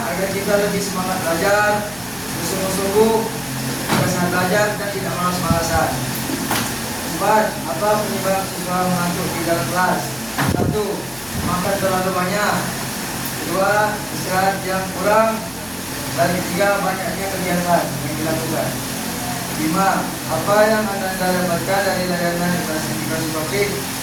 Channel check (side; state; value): left; noise; hum, 22 dB below the sound